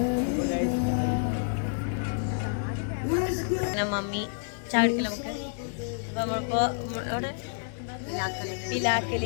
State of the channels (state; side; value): silent; right; digital silence